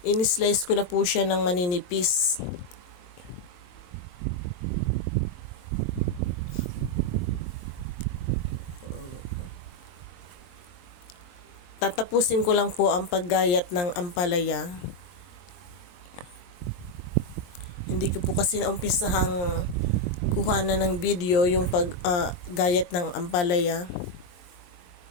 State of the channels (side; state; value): right; late; 23 ms